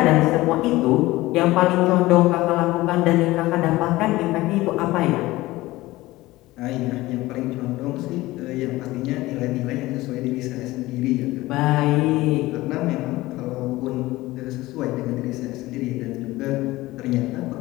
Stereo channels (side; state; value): right; quieter; 18.5 dB